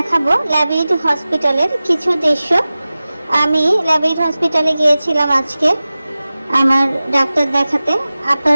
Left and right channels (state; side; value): inverted; both; correlation -0.97